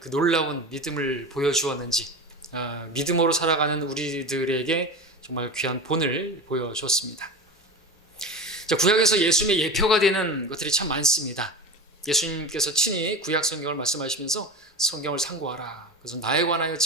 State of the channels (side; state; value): both; normal; correlation 0.27